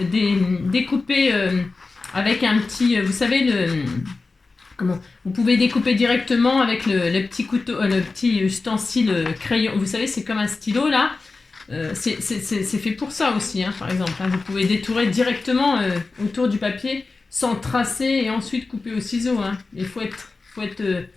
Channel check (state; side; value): quieter; right; 3.8 dB